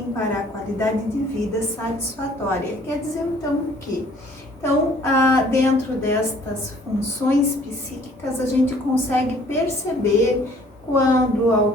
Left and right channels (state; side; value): normal; both; correlation 0.57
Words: para a qualidade de vida satisfatória. Quer dizer, então, o quê? Então, dentro destas funções psíquicas, a gente consegue perceber quando